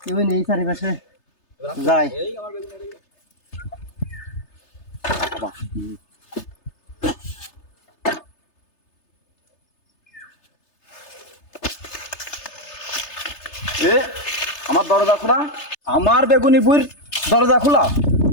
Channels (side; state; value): right; late; 3.3 ms